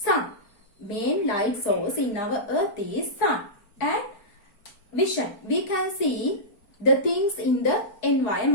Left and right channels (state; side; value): late; right; 4.4 ms